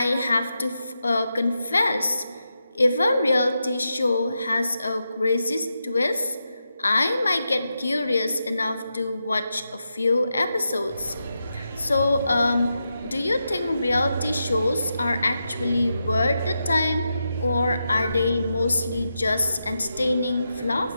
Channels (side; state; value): both; inverted; correlation -0.87